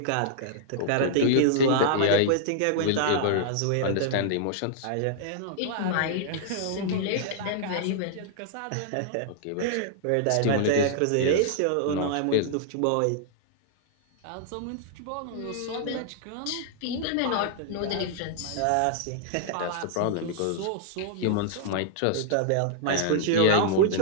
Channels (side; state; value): both; different; correlation -0.01